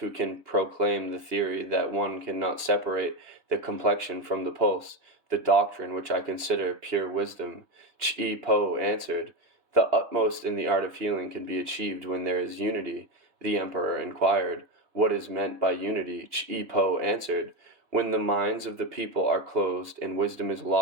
can proclaim the theory that one cannot separate the complexion from the pulse, the doctrine which I consider pure wisdom. Chi Po answered, the utmost in the art of healing can be achieved when there is unity. The emperor inquired, what is meant by unity? Chi Po answered, when the minds of the people are closed and wisdom is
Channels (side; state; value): left; late; 2.9 ms